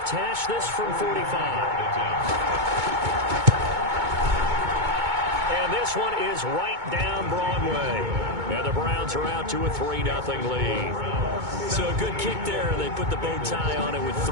hash. This from 45. And this one is right down Broadway. And the Browns are out to a 3-0 lead. So a good kick there. They put the bow tie on it with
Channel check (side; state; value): left; late; 2.2 ms